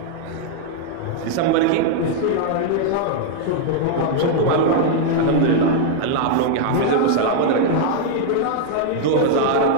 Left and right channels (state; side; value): different; both; correlation -0.01